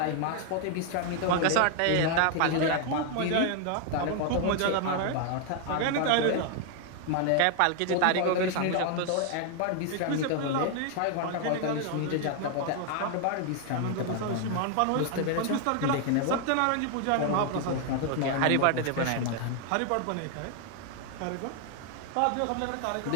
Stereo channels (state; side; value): different; both; correlation 0.00